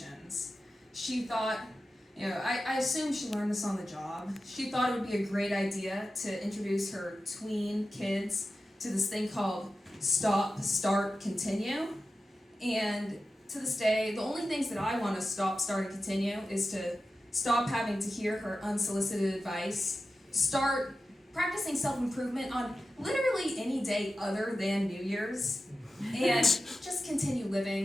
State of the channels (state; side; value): normal; both; correlation 0.93